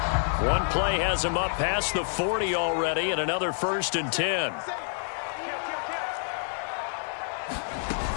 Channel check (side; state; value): right; silent; digital silence